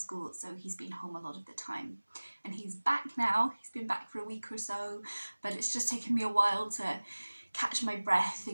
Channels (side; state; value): both; inverted; correlation -1.00